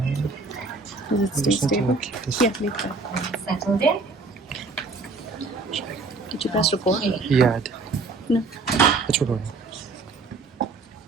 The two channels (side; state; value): left; quieter; 3.8 dB